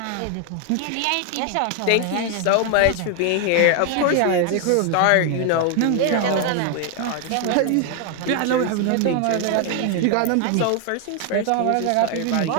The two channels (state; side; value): different; both; correlation 0.01